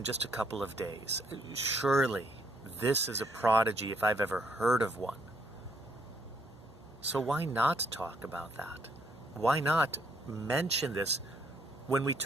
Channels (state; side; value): normal; both; correlation 0.70